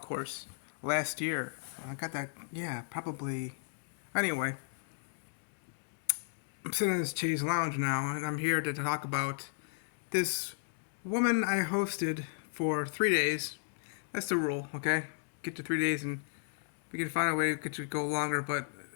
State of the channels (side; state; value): right; silent; digital silence